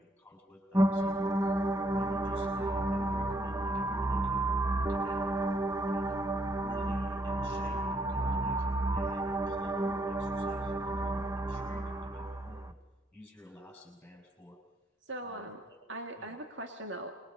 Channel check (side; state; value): both; normal; correlation 0.72